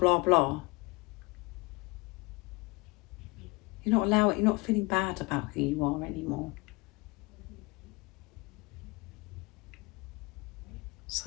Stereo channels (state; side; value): quieter; right; 25.3 dB